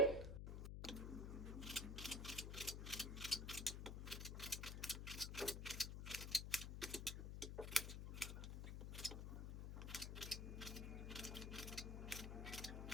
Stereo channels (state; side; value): noise; left; hum, 4 dB below the sound